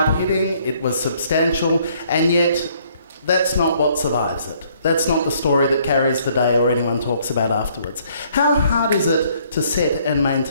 it was substantial, and yet that's not what survives it. That's not the story that carries the day or anyone talks about afterwards. How hard is it to set and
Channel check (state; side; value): inverted; both; correlation -0.64